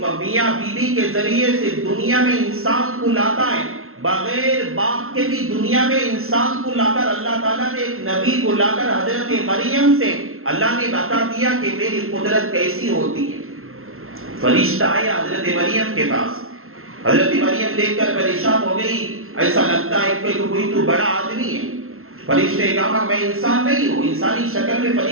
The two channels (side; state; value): left; late; 0.62 ms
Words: بیوی کے ذریعے سے دنیا میں انسان کو لاتا ہے، بغیر باپ کے بھی دنیا میں انسان کو لا کر اللہ تعالیٰ نے ایک نبی کو لا کر حضرت مریم سے اللہ نے بتا دیا کہ میری قدرت کیسی ہوتی ہے. فرشتہ آیا حضرت مریم کے پاس، حضرت مریم دیکھ کر پریشان ہو گئی، ایسا لگتا ہے کہ کوئی تو بڑا آدمی ہے. فرشتے نے کہا میں انسان نہیں ہوں، انسانی شکل میں